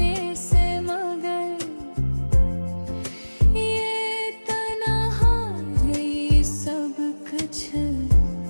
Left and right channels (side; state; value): both; inverted; correlation -1.00